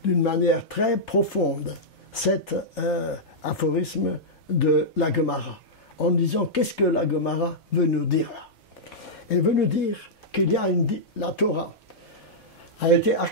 d'une manière très profonde cet aphorisme de la Gemara, en disant qu'est-ce que la Gemara veut nous dire là. Elle veut nous dire qu'il y a la Torah a été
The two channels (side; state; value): both; normal; correlation -0.10